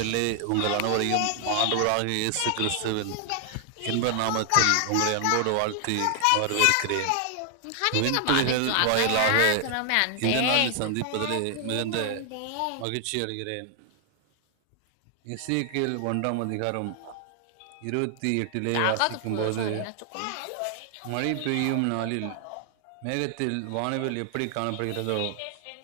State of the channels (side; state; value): both; different; correlation 0.00